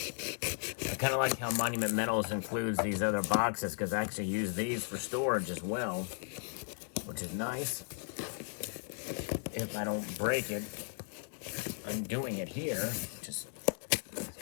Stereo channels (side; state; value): right; silent; 54 dB below the other